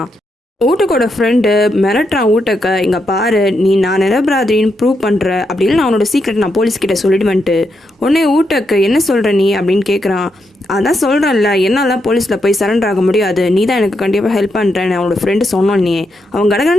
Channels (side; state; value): both; normal; correlation 0.82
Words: ஊட்டக்கோட ஃப்ரெண்டு மிரட்டுறான் ஊட்டக்க, இங்கே பாரு நீ நான் நிரபராதின்னு ப்ரூவ் பண்ணுற அப்படின்னு நான் அவனோட சீக்ரெட் நான் போலீஸ்கிட்ட சொல்லிடுவேன்ட்டு. உடனே ஊட்டக்கு என்ன சொல்கிற நீ அப்படின்னு கேட்குறான். அதான் சொல்கிறேன்ல, என்னால் போலீஸில் போய் சரண்டர் ஆக முடியாது, நீ தான் எனக்கு கண்டிப்பாக ஹெல்ப் பண்ணுறேன்னு அவனோட ஃப்ரெண்டு சொன்னோன்னே அவன்